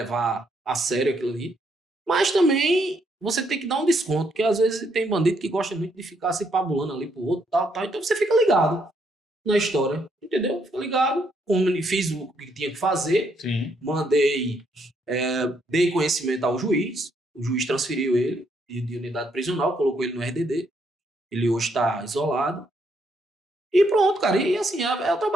a sério aquilo ali. Mas também você tem que dar um desconto, porque às vezes tem bandido que gosta muito de ficar se pabulando ali pro outro, tal. Então você fica ligado na história, entendeu? Fica ligado, fiz o que tinha que fazer. Sim. Mandei, dei conhecimento ao juiz, o juiz transferiu ele de unidade prisional, colocou ele no RDD, ele hoje está isolado. E pronto, cara, e assim, é o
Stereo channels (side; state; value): both; normal; correlation 0.73